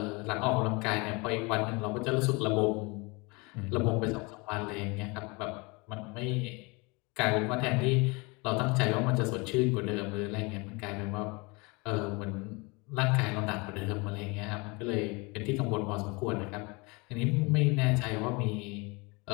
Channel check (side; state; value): right; quieter; 27.6 dB